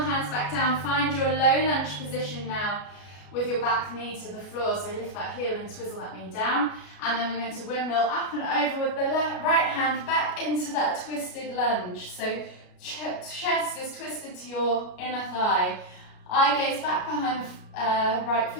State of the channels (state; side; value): late; right; 33 ms